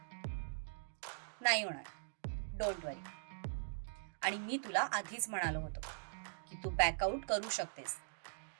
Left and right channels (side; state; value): left; silent; digital silence